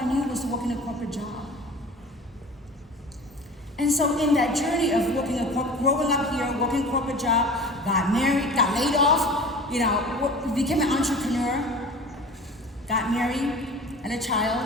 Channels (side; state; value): both; normal; correlation 0.39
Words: knew was to work in a corporate job. And so in that journey of growing up here, working a corporate job, got married, got laid off, you know, became an entrepreneur, got married, had a